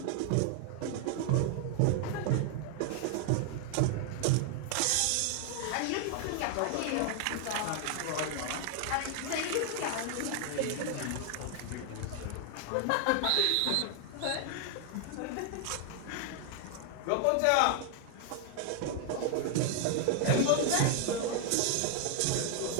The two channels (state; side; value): different; both; correlation 0.00